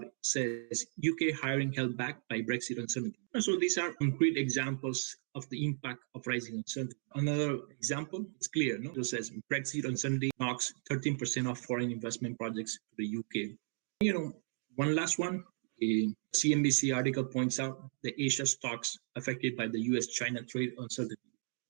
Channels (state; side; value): silent; left; digital silence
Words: says, UK hiring held back by Brexit uncertainty. So these are concrete examples of the impact of rising uncertainty. Another example is clear. It says Brexit uncertainty knocks 13% of foreign investment projects to the UK. One last one, a CNBC article points out the Asia stocks affected by the US-China trade uncertainty.